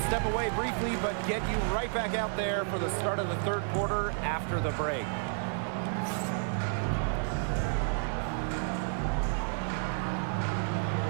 away briefly, but get you right back out there for the start of the third quarter after the break.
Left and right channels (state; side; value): silent; left; 57 dB below the other